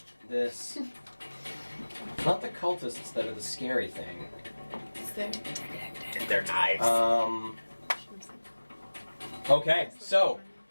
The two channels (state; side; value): inverted; both; correlation -1.00